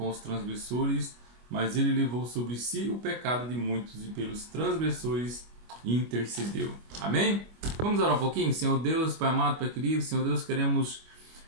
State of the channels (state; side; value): late; left; 25 ms